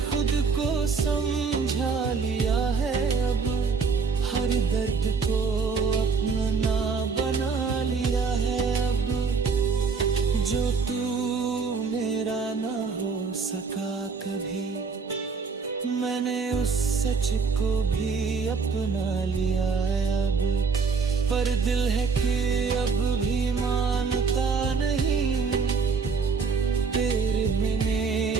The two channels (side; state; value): left; quieter; 5.1 dB